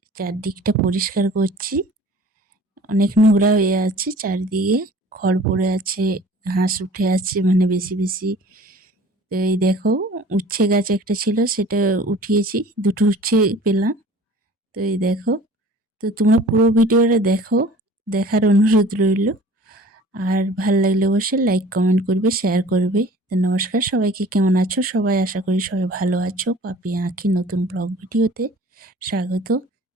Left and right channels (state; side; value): normal; both; correlation 0.47